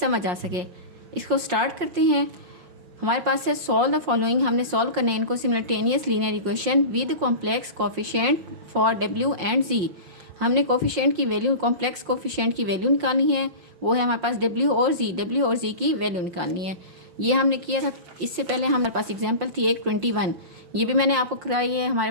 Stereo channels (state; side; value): late; left; 5.6 ms